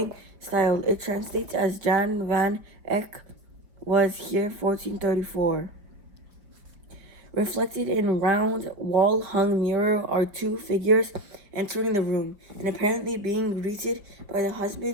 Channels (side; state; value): left; late; 4.8 ms